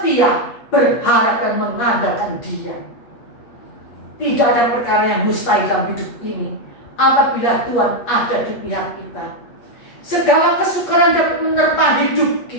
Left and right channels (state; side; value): late; right; 8.4 ms